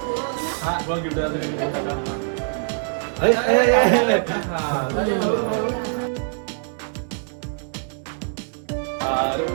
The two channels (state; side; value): silent; left; 63 dB below the other